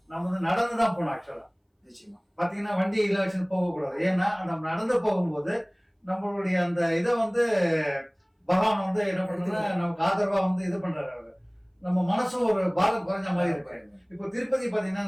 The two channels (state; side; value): identical; both; correlation 1.00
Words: நம்ம நடந்துதான் போனோம். ஆக்சுவலா நிச்சயமா பாத்தீங்கன்னா வண்டியில வச்சு போகக்கூடாது. ஏன்னா நம்ம நடந்து போகும்போது நம்மளுடைய அந்த இதை பகவான் என்ன பண்றதுன்னா நமக்கு ஆதரவா இது பண்றாரு. அவரு நம்ம மனசும் ஒரு பாரம் குறைஞ்ச மாதிரி இருக்கு. இப்போ திருப்பதி பாத்தீங்கன்னா